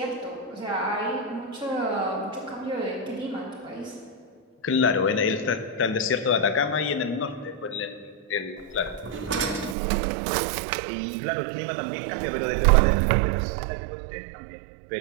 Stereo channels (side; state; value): left; drops out; at 9.8 s